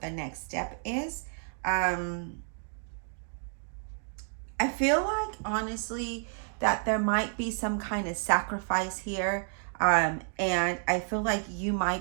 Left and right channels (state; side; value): silent; left; 56 dB below the other